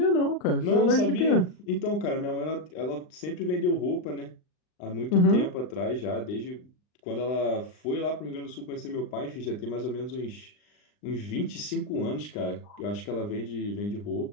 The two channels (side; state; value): right; late; 39 ms